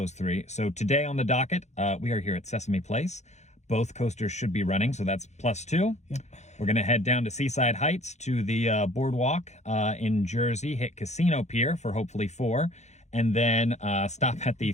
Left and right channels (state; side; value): late; right; 0.33 ms